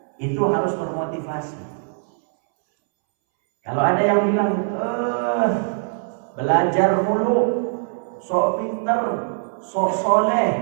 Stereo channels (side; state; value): left; silent; 64 dB below the other